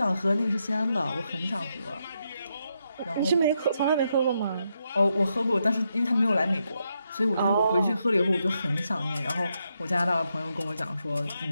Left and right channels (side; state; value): both; inverted; correlation -0.81